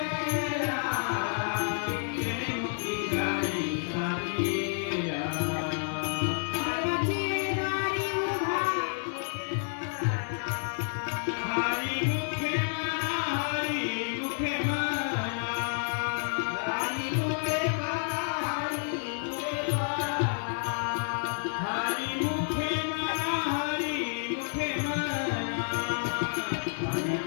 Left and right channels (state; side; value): silent; right; digital silence